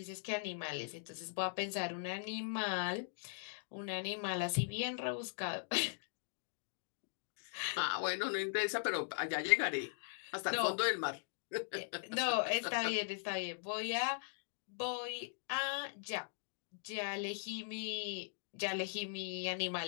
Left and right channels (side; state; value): right; silent; digital silence